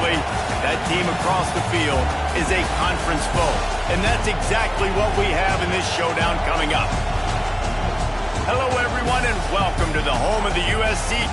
that team across the field is a conference foe. And that's exactly what we have in this showdown coming up. Hello, everyone, and welcome to the home of the USC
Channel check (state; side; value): identical; both; correlation 1.00